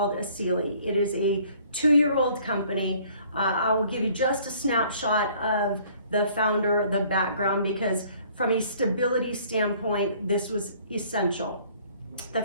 Asili. It is a 2-year-old company. I will give you just a snapshot of the founder, the background, because from a stability standpoint, this was essential. The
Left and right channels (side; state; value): both; inverted; correlation -0.58